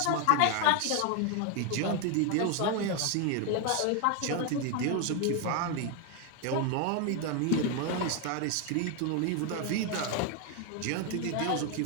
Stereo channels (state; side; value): different; both; correlation 0.01